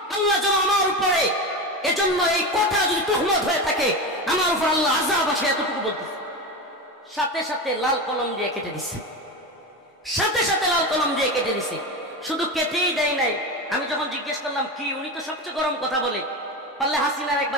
আল্লাহ যেন আমার উপরে, এজন্য এই কথা যদি তুহমত হয়ে থাকে আমার উপর আল্লাহ আযাব আসে, এতটুকু বলতেছে। সাথে সাথে লাল কলম দিয়ে কেটে দিছে, সাথে সাথে লাল কলম দিয়ে কেটে দিছে। শুধু কেটেই দেয় নাই, আমি যখন জিজ্ঞেস করলাম কি, উনি তো সবচেয়ে গরম কথা বলে, পারলে হাসিনার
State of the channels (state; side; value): normal; both; correlation 0.21